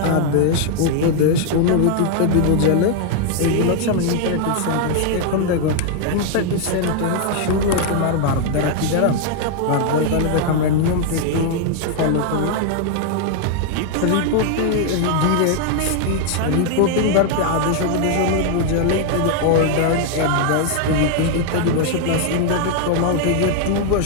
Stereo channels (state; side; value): different; both; correlation 0.00